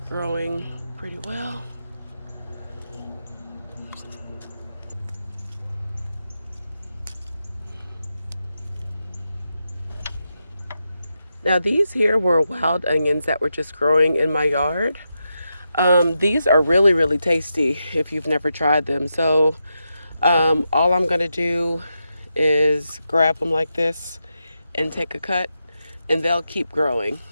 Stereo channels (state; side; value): inverted; both; correlation -0.87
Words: pretty well. Now these here were wild onions that were just growing in my yard. These are really, really tasty if you've never tried them. So all I'm gonna do is grab them like this and take a cut, and they'll keep growing.